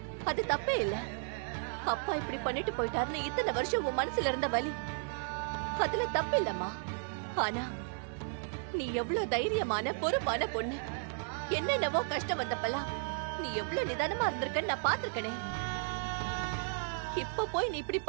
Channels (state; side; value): silent; left; 55 dB below the other